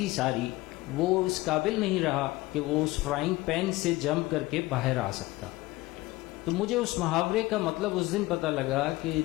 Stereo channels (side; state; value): right; quieter; 19.6 dB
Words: सारी, वो इस काबिल नहीं रहा कि वो उस फ्राइंग पैन से जंप करके बाहर आ सकता। तो मुझे उस मुहावरे का मतलब उस दिन पता लगा कि